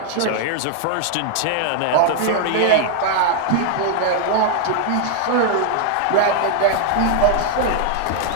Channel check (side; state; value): both; different; correlation 0.00